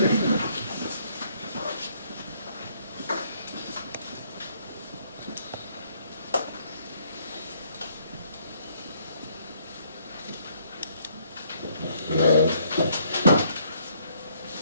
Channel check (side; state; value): both; inverted; correlation -0.67